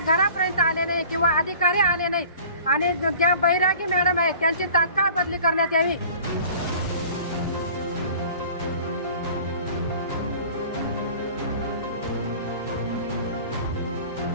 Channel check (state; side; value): inverted; both; correlation -0.45